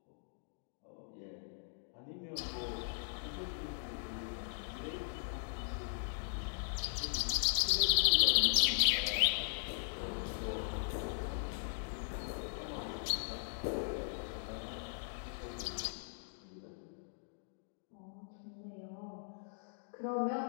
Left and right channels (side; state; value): right; silent; digital silence